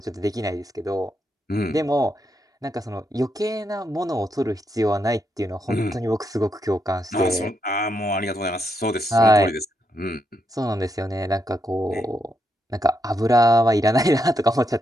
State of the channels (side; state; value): both; normal; correlation 0.81